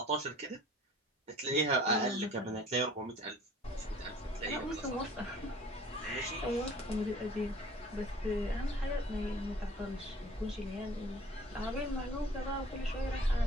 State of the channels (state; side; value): normal; both; correlation 0.49